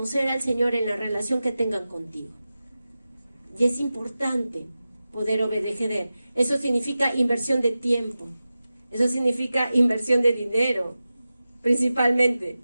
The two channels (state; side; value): inverted; both; correlation -0.94